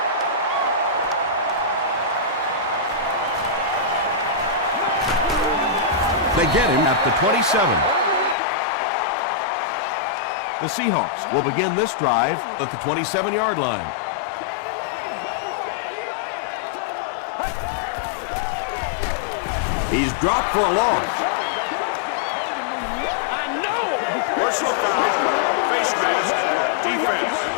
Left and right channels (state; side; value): drops out; right; at 8.3 s